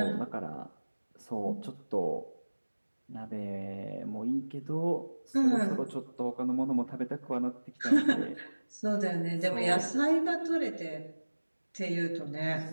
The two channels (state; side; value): inverted; both; correlation -1.00